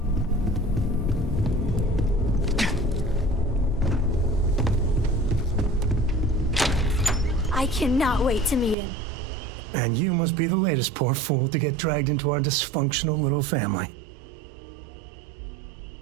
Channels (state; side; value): drops out; left; at 8.8 s